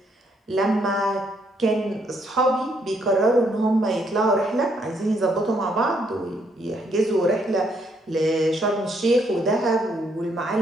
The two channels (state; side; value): normal; both; correlation 0.72